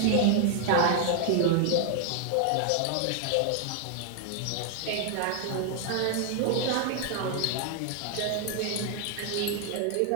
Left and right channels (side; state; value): both; different; correlation 0.00